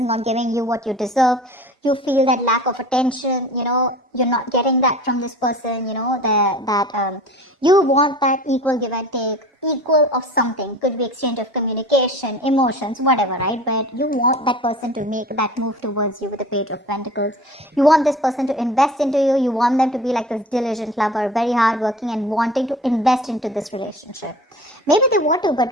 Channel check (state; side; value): normal; both; correlation 0.40